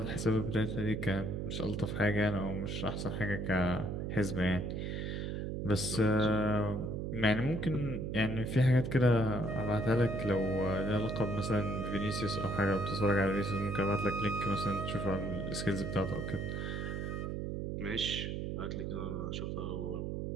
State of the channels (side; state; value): right; noise; hum, 3 dB below the sound